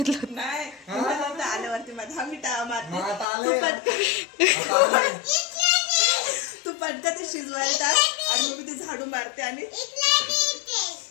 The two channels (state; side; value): drops out; right; at 3.2 s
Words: होतं? नाही मला आल्यावरती माझा मिठा मारते. मग आता आलंय. तू पटकन ते शिजवायला टाक आणि मग मी ते झाडू मारते. आणि